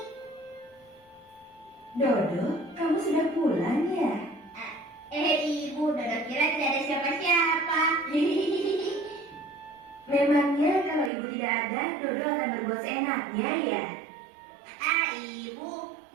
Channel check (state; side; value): drops out; left; at 11.1 s